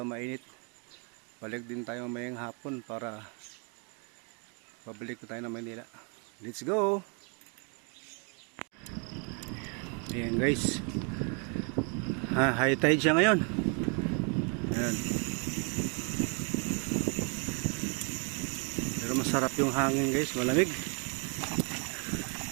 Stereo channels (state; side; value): quieter; left; 37.3 dB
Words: mainit. Balik din tayo mayang hapon para pabalik ko tayo ng Manila. Let's go! Ayan guys, high tide siya ngayon. Ayan. Pero masarap yung hangin guys, malamig.